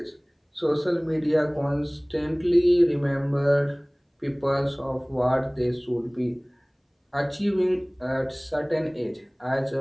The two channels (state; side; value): identical; both; correlation 1.00